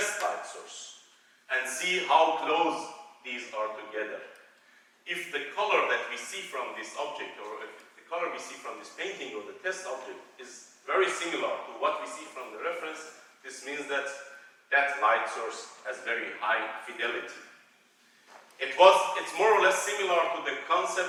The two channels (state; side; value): identical; both; correlation 1.00